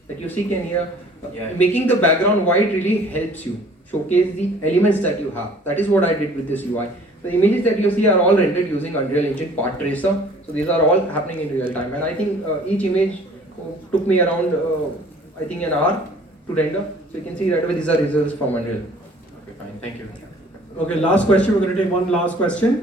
that you see can here. Yeah. Making the background white really helps you showcase the elements that you have. That is what I did with this UI. The images that you see are all rendered using Unreal Engine Path Tracer. So these are all happening in real time. And I think each image took me around, I think an hour to render. So you can see right away these are results from Unreal. Okay, fine. Thank you. Okay, last question. We're going to take one last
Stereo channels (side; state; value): both; normal; correlation 0.52